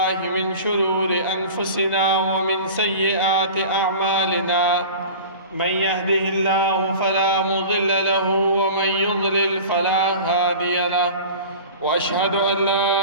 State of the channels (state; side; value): inverted; both; correlation -0.37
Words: من شرور أنفسنا ومن سيئات أعمالنا. من يهده الله فلا مضل له ومن يضلل فلا هادي له، وأشهد أن